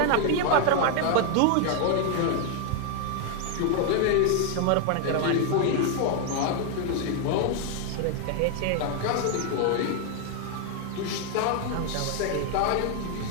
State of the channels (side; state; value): both; different; correlation 0.00